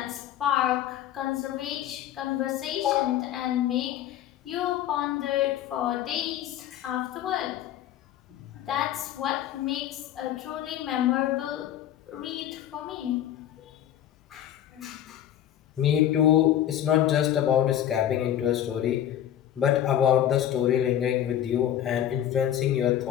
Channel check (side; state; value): right; quieter; 11.2 dB